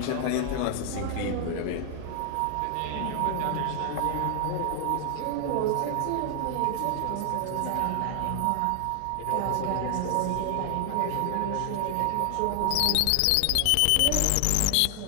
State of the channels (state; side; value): different; both; correlation 0.00